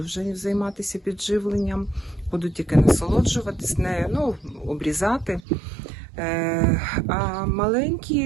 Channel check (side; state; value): left; drops out; at 5.4 s